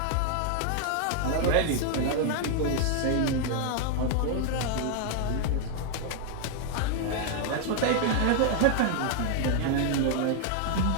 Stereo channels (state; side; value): different; both; correlation 0.00